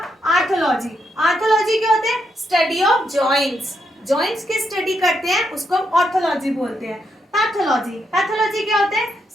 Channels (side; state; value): both; normal; correlation 0.79